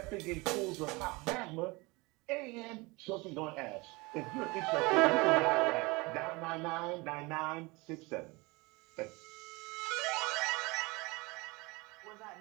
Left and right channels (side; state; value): left; quieter; 24.8 dB